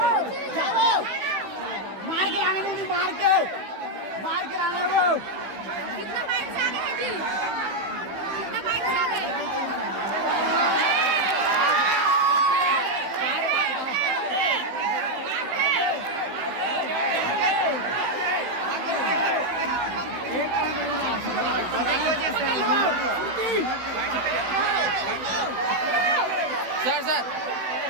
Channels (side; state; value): left; late; 16 ms